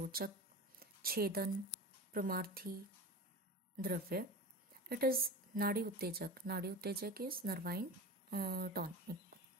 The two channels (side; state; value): both; normal; correlation 0.30